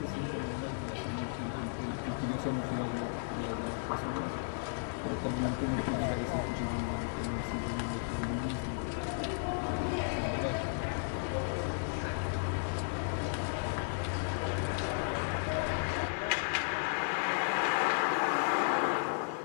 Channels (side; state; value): right; silent; 55 dB below the other